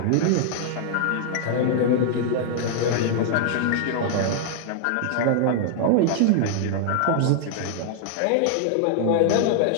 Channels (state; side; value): different; both; correlation -0.01